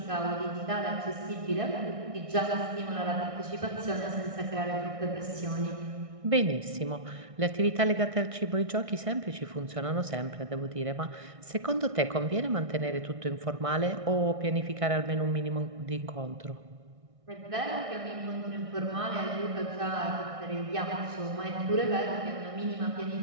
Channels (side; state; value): left; late; 1.6 ms